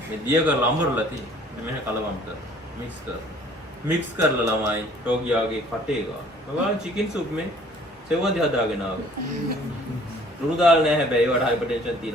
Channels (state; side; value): normal; both; correlation 0.55